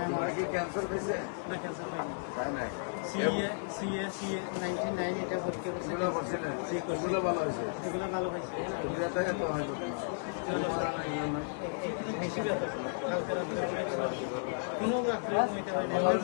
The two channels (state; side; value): silent; right; 55 dB below the other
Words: আমার কি ক্যান্সার হয়েছে? না, ক্যান্সার পাইনি। তাই নাই? সিএ 99 এটা ভর্তি করছি। এগুলো করছিলেন? জি করছি। এগুলো ভালো হয়েছে? এগুলো ভালো হয়েছে। তো বিয়াতে এত হয়তো না। বেশি ব্যথা হালকা কোনো